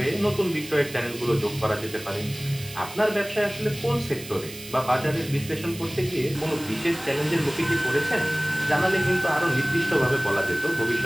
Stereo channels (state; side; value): noise; right; hiss, 14 dB below the sound